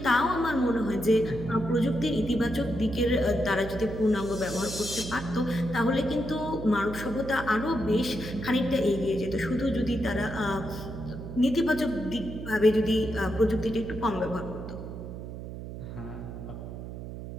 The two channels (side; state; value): right; noise; hum, 9 dB below the sound